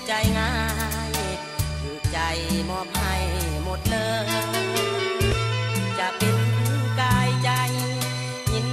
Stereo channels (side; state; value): both; identical; correlation 1.00